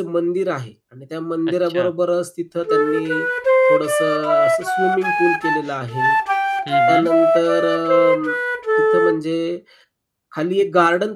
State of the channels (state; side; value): identical; both; correlation 1.00